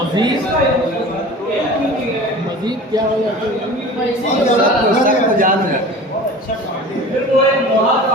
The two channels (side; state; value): both; normal; correlation 0.39